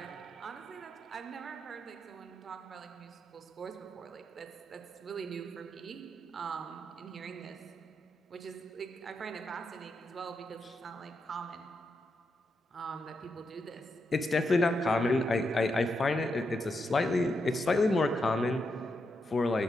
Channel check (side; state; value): both; normal; correlation 0.83